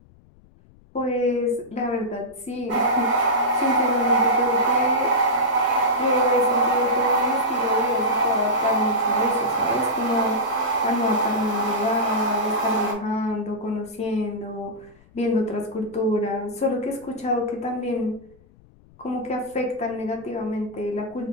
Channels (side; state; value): left; noise; rumble, 27 dB below the sound